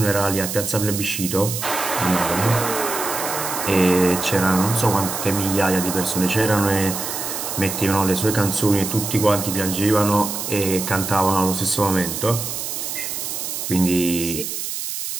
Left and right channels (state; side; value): noise; right; hiss, 5 dB below the sound